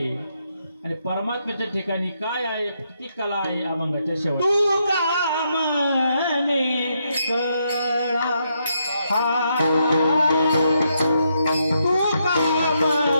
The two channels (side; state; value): both; inverted; correlation -0.79